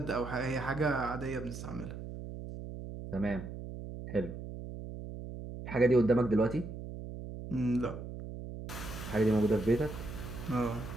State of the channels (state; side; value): noise; right; hum, 9 dB below the sound